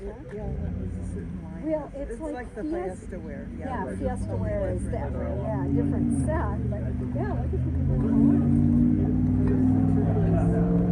Yeah, that was a certain line. Well, it's like the Fiesta- Fiesta wear. Yeah, but Fiesta only wear is different definitely, colors. yeah, different set, but yeah, look at the different colors.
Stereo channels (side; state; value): both; identical; correlation 1.00